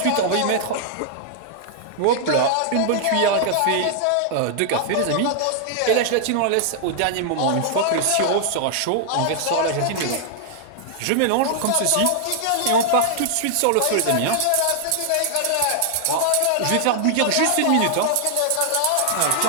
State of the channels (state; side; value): different; both; correlation 0.00